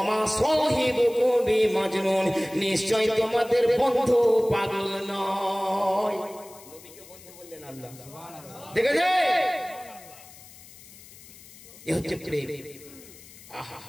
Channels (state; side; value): noise; left; hiss, 20 dB below the sound